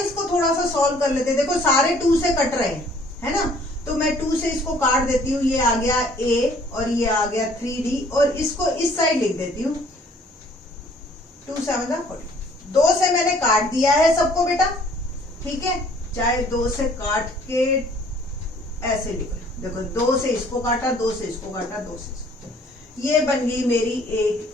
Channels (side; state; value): both; normal; correlation 0.58